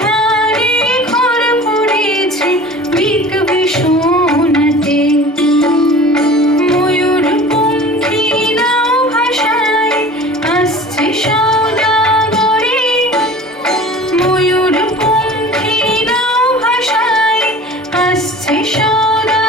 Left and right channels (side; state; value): both; normal; correlation 0.41